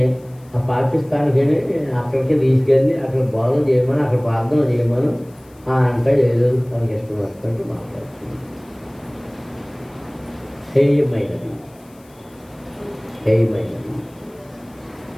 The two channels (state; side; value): noise; left; hiss, 30 dB below the sound